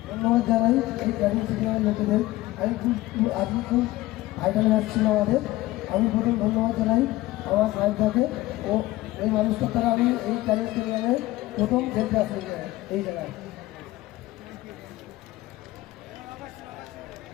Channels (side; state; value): right; quieter; 17.7 dB